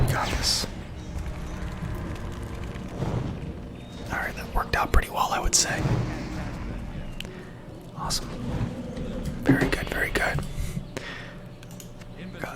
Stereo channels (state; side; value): identical; both; correlation 1.00